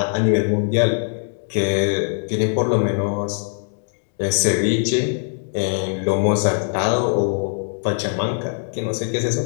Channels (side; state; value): right; silent; digital silence